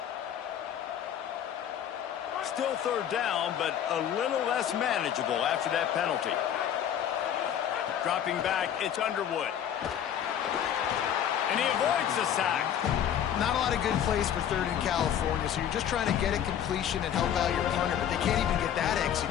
Still 3rd down, but a little less manageable after that penalty. Dropping back, it's Underwood. And he avoids the sack. Not a lot of good plays for 3rd in California, so you're just trying to get a completion and help out your punter, but they can't even get that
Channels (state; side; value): quieter; right; 9.6 dB